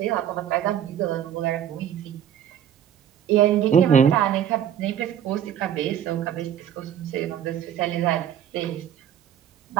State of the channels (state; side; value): quieter; left; 9.7 dB